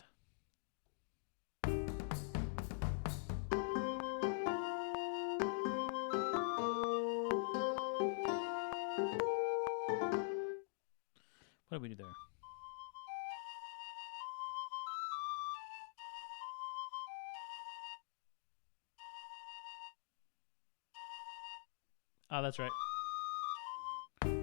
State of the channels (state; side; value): silent; right; digital silence